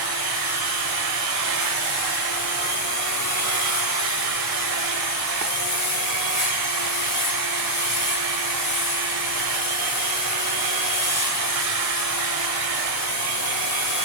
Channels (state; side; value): normal; both; correlation 0.00